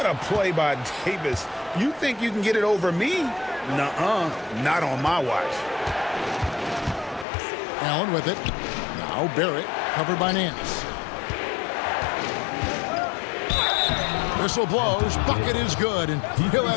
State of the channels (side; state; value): right; drops out; at 7.2 s